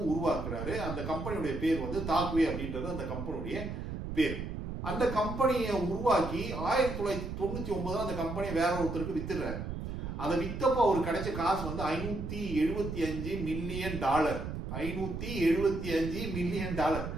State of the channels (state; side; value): noise; right; rumble, 6 dB below the sound